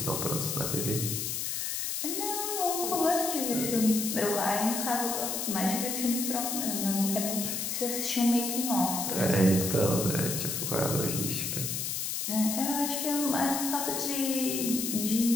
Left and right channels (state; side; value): noise; left; hiss, 2 dB below the sound